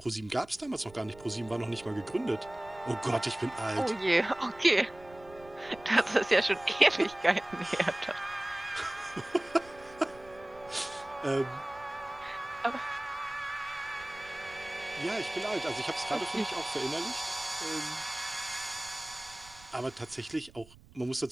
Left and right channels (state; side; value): noise; right; rumble, 22 dB below the sound